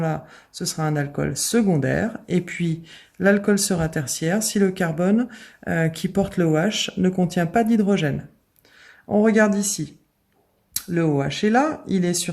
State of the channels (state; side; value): identical; both; correlation 1.00